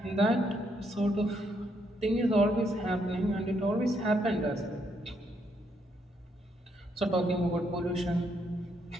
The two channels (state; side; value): normal; both; correlation 0.75